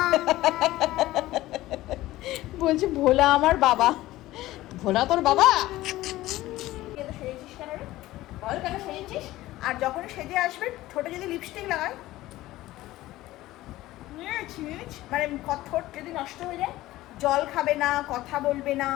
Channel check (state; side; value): quieter; right; 16.6 dB